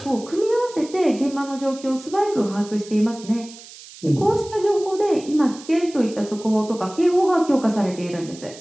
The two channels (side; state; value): right; noise; hiss, 18 dB below the sound